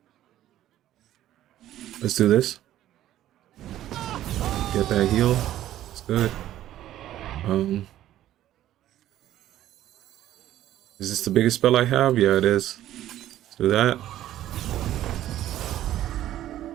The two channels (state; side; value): quieter; left; 13.0 dB